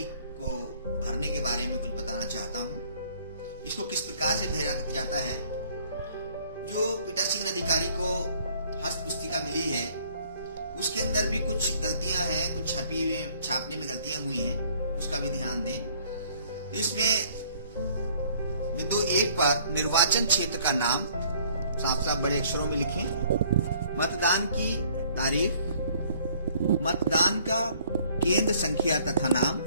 को भरने के बारे में कुछ बताना चाहता हूँ। इसको किस प्रकार से भरा जाता है। जो पीठासीन अधिकारी को हस्त पुस्तिका मिली है उसके अंदर भी कुछ गलतियां हैं, कुछ छापने में गलतियां हुई हैं, उसका भी ध्यान दें। इसमें बिंदु 1 पर निर्वाचन क्षेत्र का नाम साफ साफ बड़े अक्षरों में लिखें, मतदान की तारीख, मतदान का केंद्र संख्या तथा नाम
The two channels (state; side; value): inverted; both; correlation -0.59